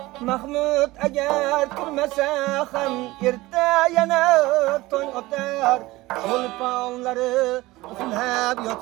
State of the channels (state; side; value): quieter; left; 19.3 dB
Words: Mahmud agar turmasa ham erta yana tong otar. Cho'lponlari uxlab